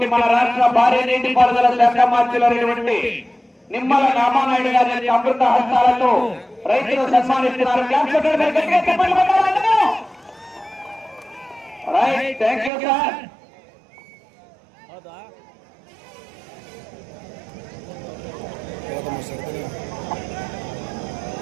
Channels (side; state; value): left; drops out; at 12.7 s